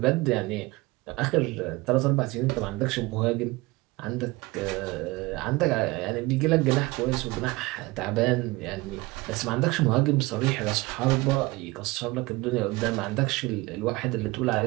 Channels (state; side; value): quieter; left; 21.9 dB